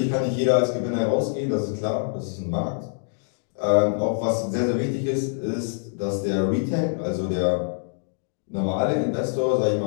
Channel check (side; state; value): right; silent; digital silence